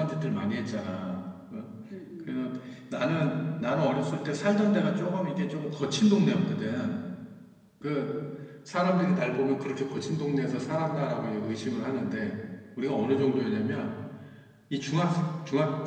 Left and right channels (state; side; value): identical; both; correlation 1.00